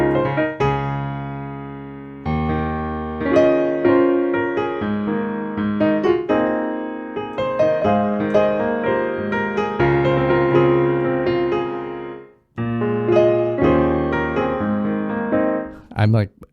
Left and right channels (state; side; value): identical; both; correlation 1.00